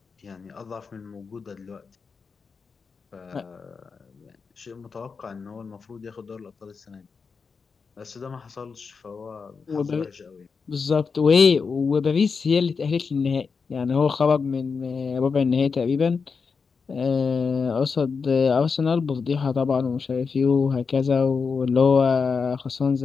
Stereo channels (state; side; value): quieter; right; 5.2 dB